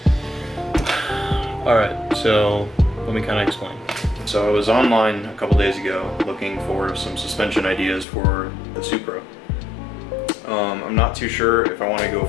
Alright, so let me kind of explain. So I was online a couple days ago looking for some suspension ideas for the Supra. I'm not too sure if I want to go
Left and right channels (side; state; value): right; drops out; at 8.1 s